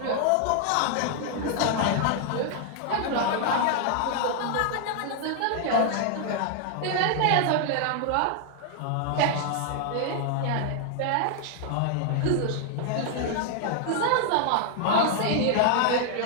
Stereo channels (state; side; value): different; both; correlation 0.00